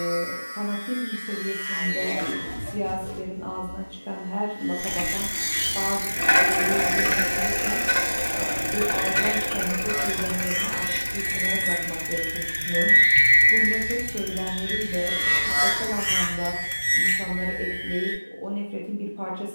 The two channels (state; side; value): inverted; both; correlation -1.00